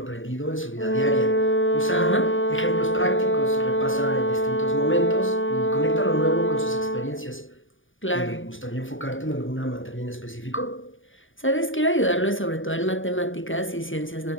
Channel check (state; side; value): late; right; 0.57 ms